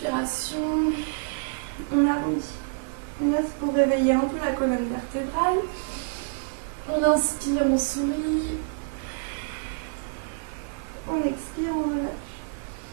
on arrondit. Là, pour réveiller un peu la colonne vertébrale, on inspire, on sourit, on expire, on relâche.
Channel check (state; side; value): quieter; left; 37.6 dB